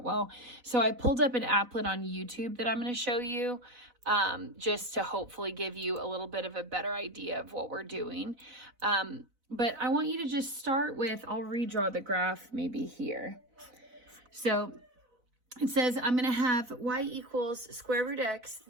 well. So I pulled up an applet on YouTube that I'm going to show you just to hopefully give you a little bit of a better idea of what we're doing. But I want you to just start with, I'll redraw the graph maybe here. So it says I'm going to have y equals square root x,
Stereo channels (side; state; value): left; late; 4.0 ms